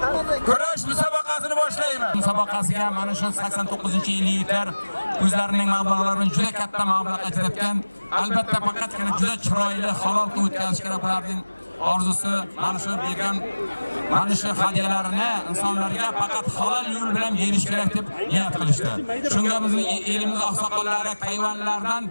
Kurash musobaqasini boshlaymiz. Musobaqasiga mana shu 89-yilliklar o'zlarining mablag'larini juda katta mablag' ajratgan. Albatta faqatgina juda chiroyli halol qilib o'tkazish kerak ularning orzusi. Mana shu bergan mana shu hadiyalarini insonlarga faqat halol yo'l bilan berish kerak deb niyat qilishdi. Shunga bizning elimiz oqsoqollari hayvonlardan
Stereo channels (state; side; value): inverted; both; correlation -1.00